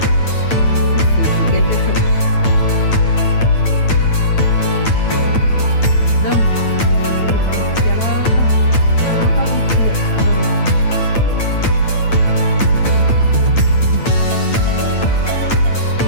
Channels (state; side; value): late; right; 8.8 ms